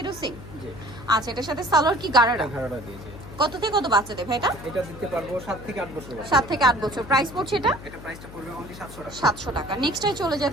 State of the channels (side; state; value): left; noise; hum, 15 dB below the sound